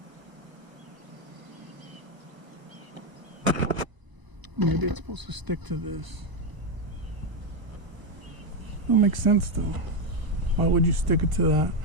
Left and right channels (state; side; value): late; left; 1.0 ms